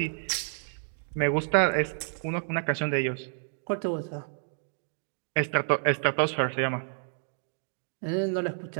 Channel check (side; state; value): left; silent; digital silence